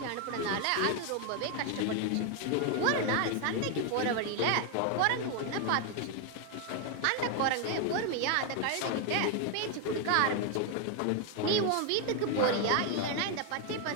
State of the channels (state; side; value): different; both; correlation 0.01